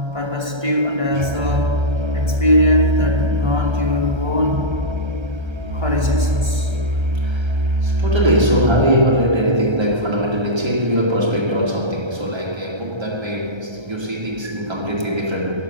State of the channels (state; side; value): late; left; 1.3 ms